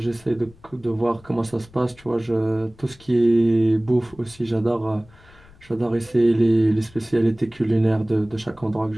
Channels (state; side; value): noise; left; rumble, 25 dB below the sound